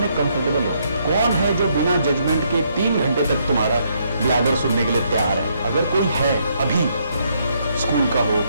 कंफर्टेबल हो? कौन है जो बिना जजमेंट के 3 घंटे तक तुम्हारा ब्लैबर सुनने के लिए तैयार है? अगर कोई है अभी, स्कूल का हो,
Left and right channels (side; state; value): both; inverted; correlation -0.73